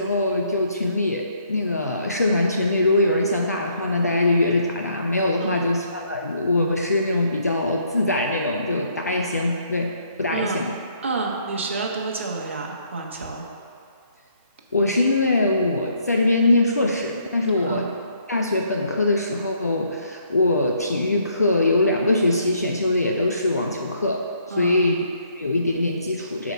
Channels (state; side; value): inverted; both; correlation -0.68